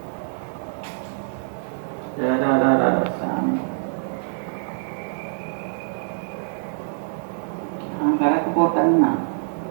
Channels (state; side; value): silent; left; digital silence